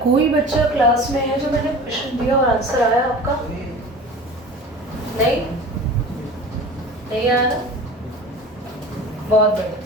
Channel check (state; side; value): normal; both; correlation 0.38